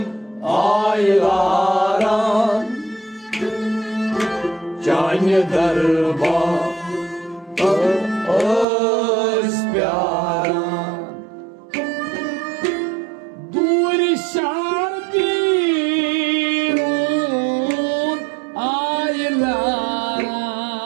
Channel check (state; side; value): drops out; left; at 8.7 s